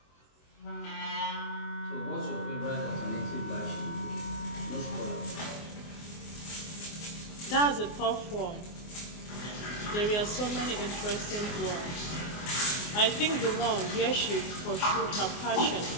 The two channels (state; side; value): late; right; 24 ms